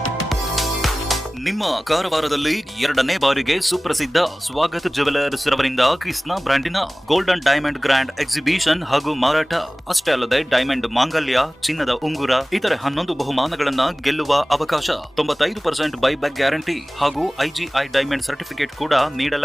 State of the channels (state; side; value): normal; both; correlation 0.98